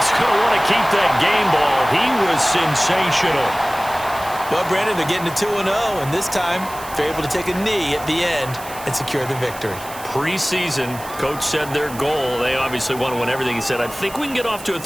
going to want to keep that game ball. He was sensational. Well, Brandon, they're getting to 2-0, and this time they're able to take a knee at the end and secure the victory. Preseason, coach said their goal, they obviously want to win everything. He said, I think we can get off to a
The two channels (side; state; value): right; noise; hiss, 15 dB below the sound